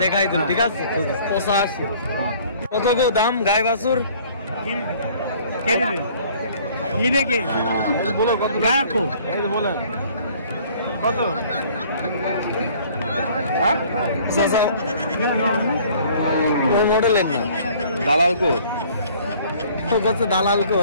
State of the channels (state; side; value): inverted; both; correlation -0.55